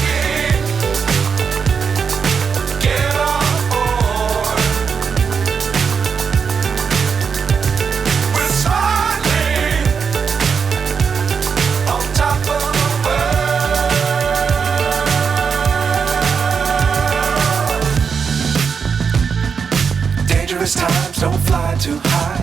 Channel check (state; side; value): quieter; left; 6.1 dB